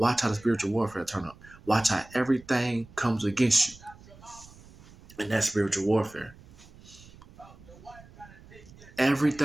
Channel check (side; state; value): right; noise; rumble, 22 dB below the sound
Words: how the spiritual warfare turn up. Watch how everything comes against you. in that spiritual warfare.